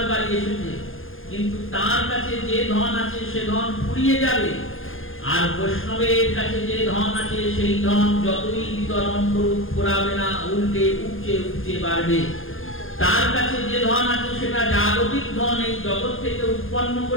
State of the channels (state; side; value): late; right; 0.59 ms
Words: বাড়ি এসেছে, কিন্তু তার কাছে যে ধন আছে সে ধন ফুরিয়ে যাবে। আর বৈষ্ণবের কাছে যে ধন আছে সেই ধন যতই বিতরণ করুক ফুরাবে না, উল্টে উপচে উপচে বাড়বে। তার কাছে যে ধন আছে সেটা জাগতিক ধন, এই জগৎ থেকে উৎপন্ন